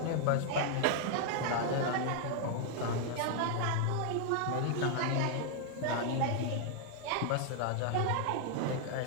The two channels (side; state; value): both; different; correlation 0.00